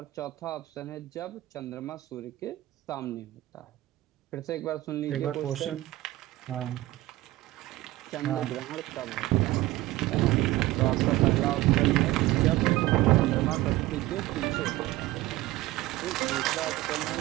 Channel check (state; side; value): quieter; left; 17.5 dB